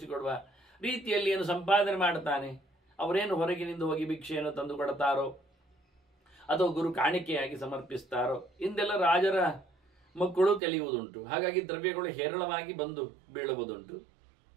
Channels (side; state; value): left; drops out; at 10.6 s